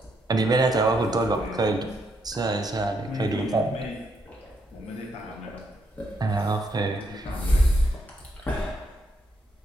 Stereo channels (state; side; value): normal; both; correlation 0.76